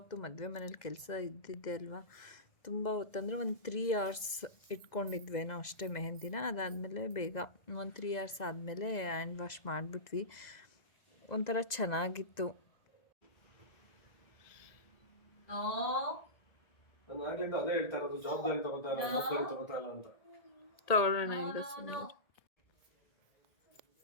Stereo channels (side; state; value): right; late; 2.0 ms